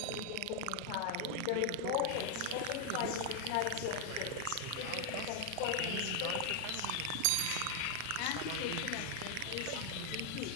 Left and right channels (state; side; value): different; both; correlation 0.00